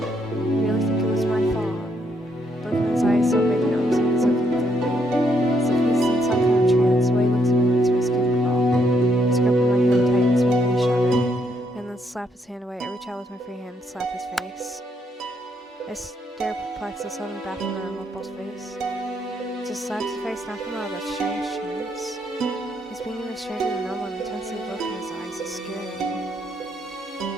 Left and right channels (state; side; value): normal; both; correlation 0.74